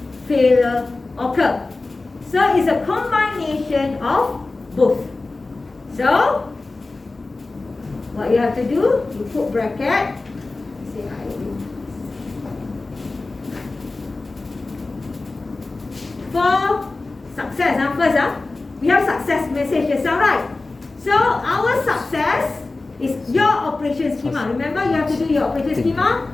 failure occur. So it's a combination of both. So what you have to do, you put bracket. Say I do. For success, first, we have success message just now, right? So our success is your operation schema. Remember, you have to do your operation schema.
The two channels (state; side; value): quieter; right; 3.4 dB